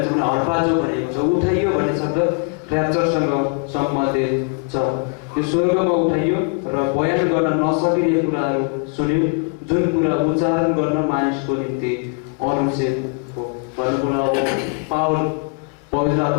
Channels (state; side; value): quieter; right; 34.5 dB